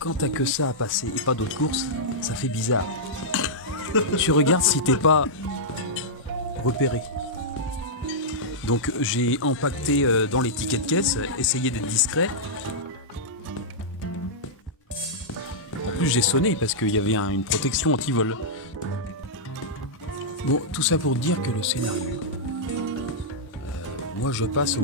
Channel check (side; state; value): both; normal; correlation -0.10